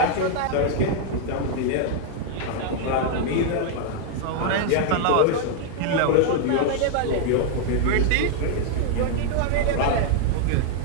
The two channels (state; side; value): different; both; correlation 0.00